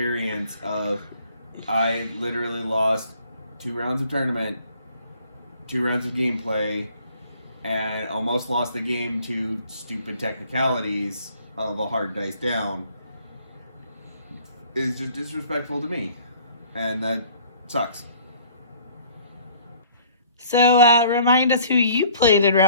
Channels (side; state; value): both; inverted; correlation -0.55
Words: of, I literally lost 2 rounds of tournament, 2 rounds of gameplay, and almost lost the game to stupid technicalities of a hard dice down, is just disrespectful to me. And that sucks. So, remind us who you played in